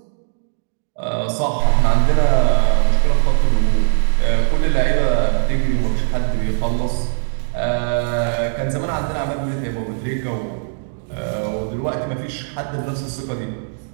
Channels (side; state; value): left; silent; digital silence